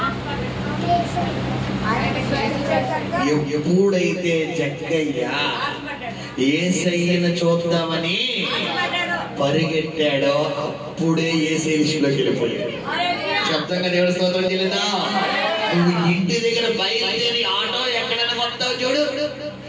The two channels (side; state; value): both; identical; correlation 1.00